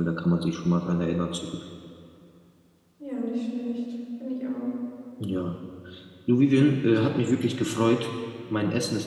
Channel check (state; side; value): identical; both; correlation 1.00